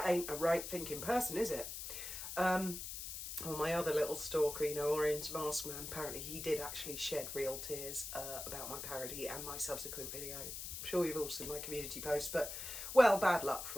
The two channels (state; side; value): noise; left; hiss, 7 dB below the sound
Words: ain't a right thinking person, is it? Well, my other little stalker, Orange Mask Man, apparently he did actually shed real tears about my parody and my subsequent video. I'm sure you've all seen my community post, but, well, bad luck